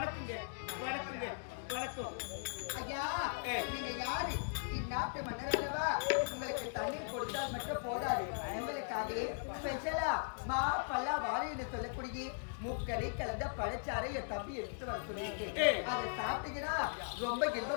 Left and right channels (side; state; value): right; silent; digital silence